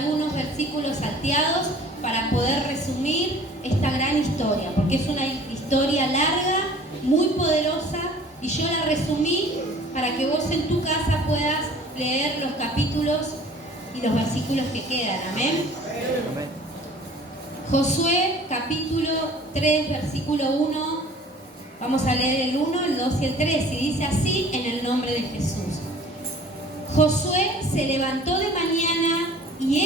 versículos salteados para poder resumir esta gran historia, porque es una historia larga, muy poderosa, y yo la resumí para que vos en tu casa puedas leer los capítulos y los versículos que quedan. Amén. Josué capítulo 3, versículo 1. Vamos a leer el 1, el 2 y el 3, y dice así en el nombre de Jesús. Josué se levantó de mañana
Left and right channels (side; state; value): both; normal; correlation 0.49